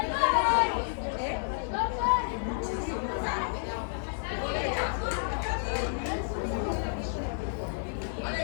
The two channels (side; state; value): right; silent; digital silence